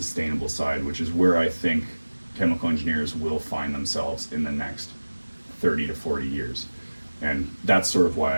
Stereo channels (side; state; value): both; inverted; correlation -1.00